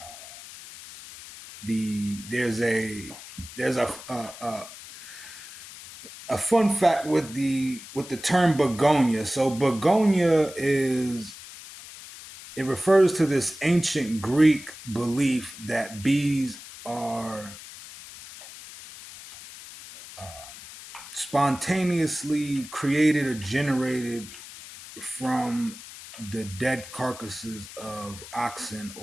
There's a fun fact with the term begonia. So begonia is it refers to this ancient Greek belief that bees are spontaneously created or generated from the dead carcasses of oxen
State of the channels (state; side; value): noise; left; hiss, 15 dB below the sound